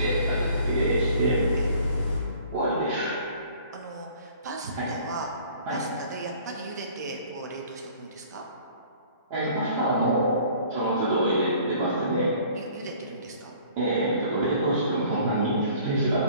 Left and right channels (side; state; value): both; inverted; correlation -0.52